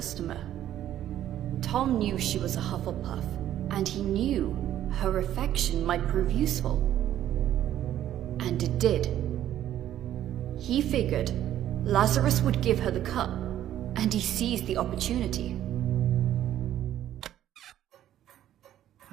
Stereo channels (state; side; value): quieter; left; 11.9 dB